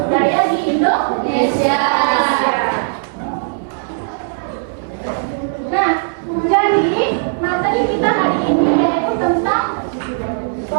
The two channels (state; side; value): silent; left; 68 dB below the other